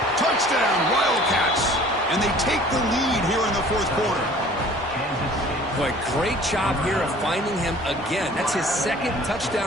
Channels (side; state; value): both; normal; correlation 0.50